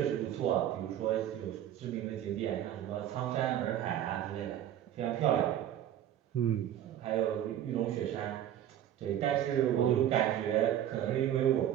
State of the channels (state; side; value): quieter; left; 11.2 dB